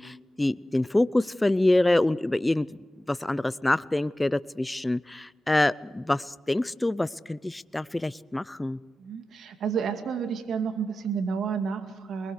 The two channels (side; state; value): both; normal; correlation 0.94